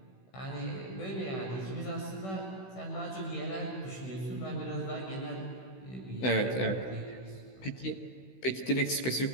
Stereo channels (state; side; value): late; right; 16 ms